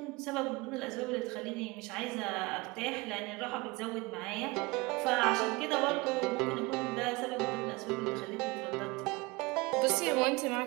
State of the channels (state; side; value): quieter; left; 24.0 dB